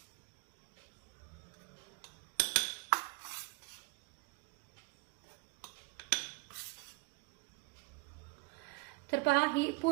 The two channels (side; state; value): left; quieter; 25.7 dB